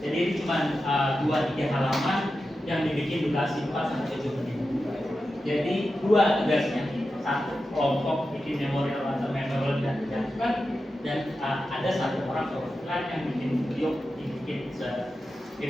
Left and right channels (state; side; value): normal; both; correlation 0.91